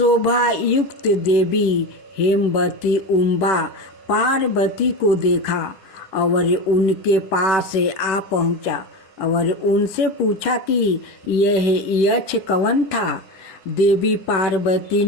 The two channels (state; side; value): late; right; 10 ms